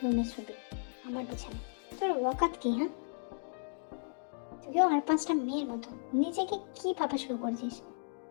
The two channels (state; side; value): silent; right; digital silence